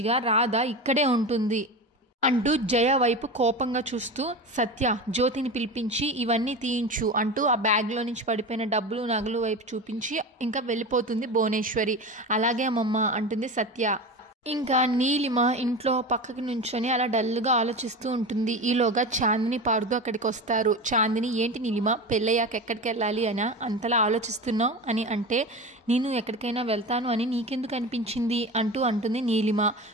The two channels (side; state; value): both; normal; correlation 0.27